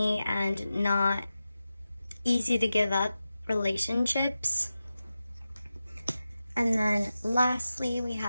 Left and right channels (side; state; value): both; inverted; correlation -0.93